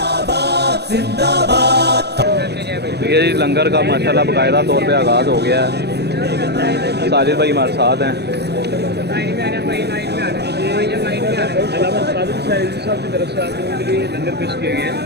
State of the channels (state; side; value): late; left; 0.48 ms